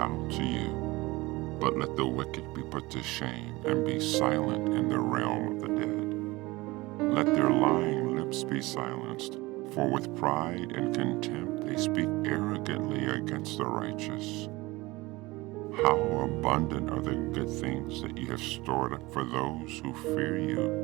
to you. But let the wicked be put to shame and be silent in the realm of the dead. Let their lying lips be silenced, for with pride and contempt they speak arrogantly against the righteous. How abundant are the good things that you have stored up for those who fear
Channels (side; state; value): left; quieter; 21.4 dB